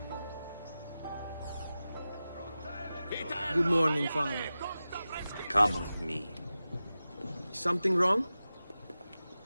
Good morning, Father. Come with me. Something wrong?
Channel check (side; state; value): both; inverted; correlation -0.94